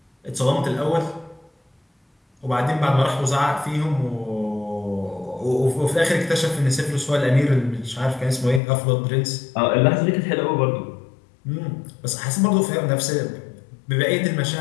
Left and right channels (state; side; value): drops out; right; at 8.6 s